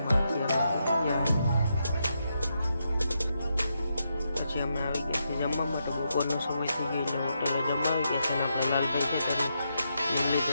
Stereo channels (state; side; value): inverted; both; correlation -0.82